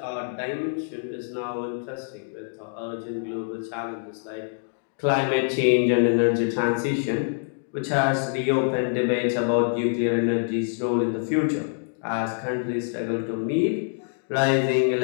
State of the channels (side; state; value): right; silent; digital silence